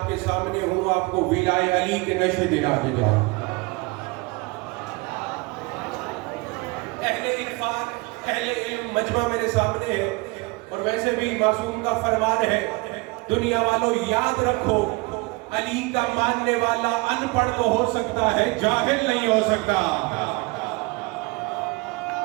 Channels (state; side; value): quieter; left; 25.0 dB